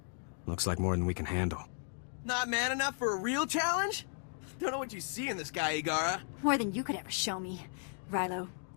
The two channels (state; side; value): silent; right; 54 dB below the other